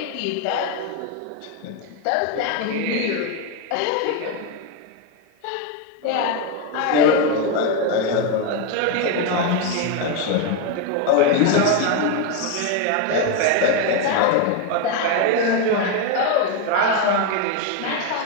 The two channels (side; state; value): both; different; correlation 0.02